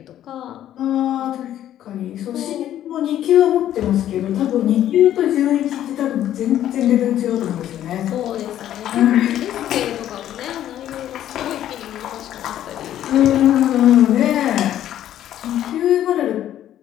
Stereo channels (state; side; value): quieter; right; 11.7 dB